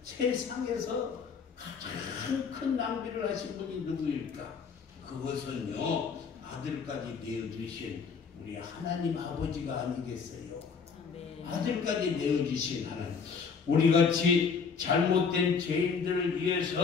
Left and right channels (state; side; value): quieter; right; 5.7 dB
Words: 세상에서 가장 큰 낭비를 하신 분이 누구일까? 그것은요, 아들까지 내어주신 우리 하나님 아버지가 아니겠어요? 아들까지 내어주신 하나님. 우리같이 잘못된 죄인들을